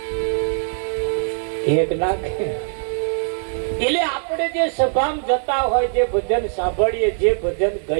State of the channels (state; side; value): silent; left; 65 dB below the other